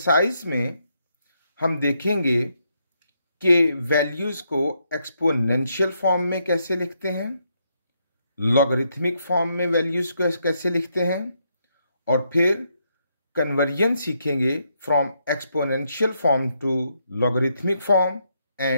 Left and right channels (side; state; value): both; inverted; correlation -0.78